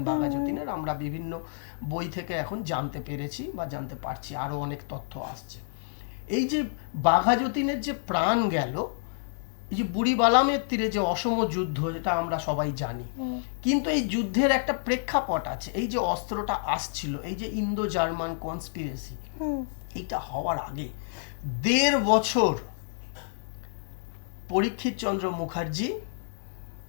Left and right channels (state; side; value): silent; right; 59 dB below the other